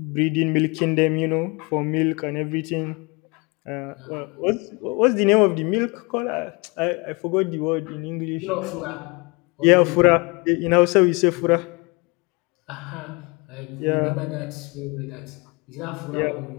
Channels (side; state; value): right; quieter; 28.5 dB